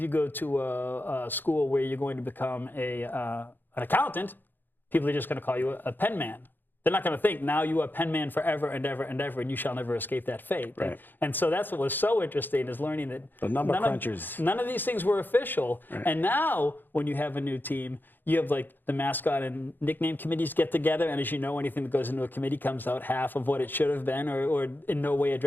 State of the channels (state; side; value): late; right; 0.092 ms